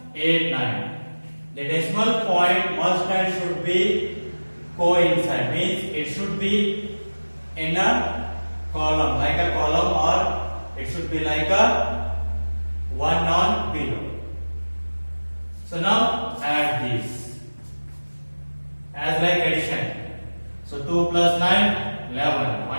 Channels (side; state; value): both; inverted; correlation -1.00